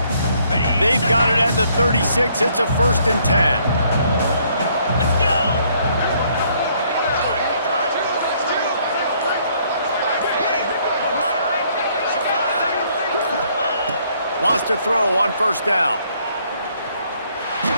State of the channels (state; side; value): inverted; both; correlation -0.66